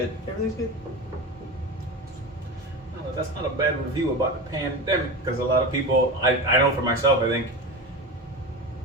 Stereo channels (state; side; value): normal; both; correlation 0.24